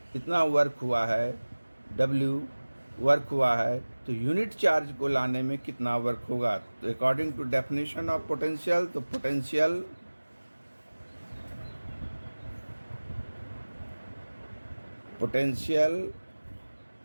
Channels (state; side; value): inverted; both; correlation -1.00